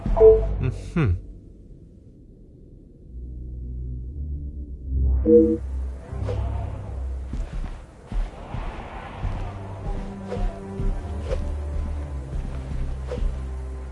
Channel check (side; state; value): both; identical; correlation 1.00